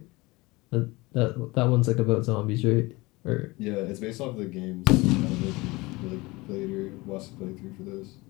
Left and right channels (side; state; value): right; quieter; 22.5 dB